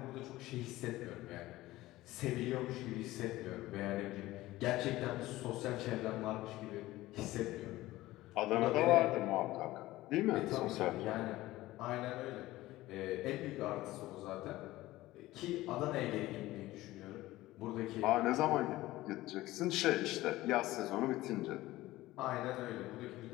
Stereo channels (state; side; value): quieter; right; 17.2 dB